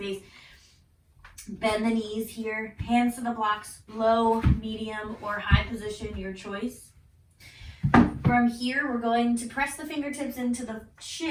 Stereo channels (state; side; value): identical; both; correlation 1.00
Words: bend the knees here, hands to the blocks, low, medium, or high position, your choice. From here, we're going to press the fingertips into the